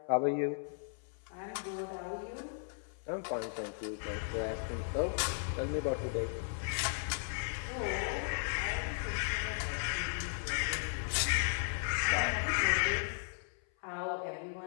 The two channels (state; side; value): silent; right; 54 dB below the other